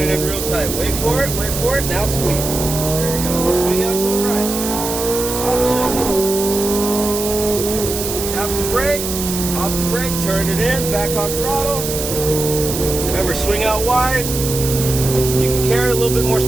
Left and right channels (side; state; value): right; noise; hiss, 5 dB below the sound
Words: in real tight. Wait for it. Wait for it. Now squeeze. There you go. Swing out to the right. Off shift. Tap the brake. Off the brake. Turn it in. Back on throttle. Remember, swing out wide. You can carry a little bit more